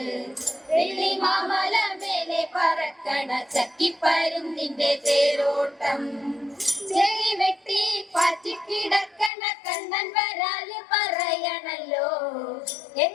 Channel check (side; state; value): right; drops out; at 9.3 s